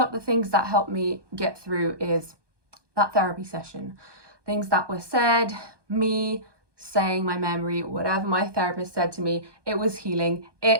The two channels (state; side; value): late; left; 1.2 ms